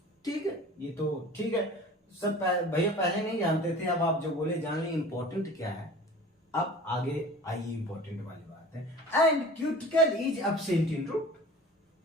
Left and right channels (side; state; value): both; normal; correlation 0.42